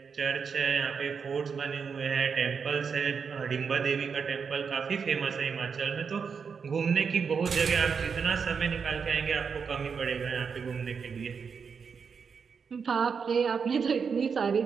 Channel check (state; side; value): quieter; left; 6.0 dB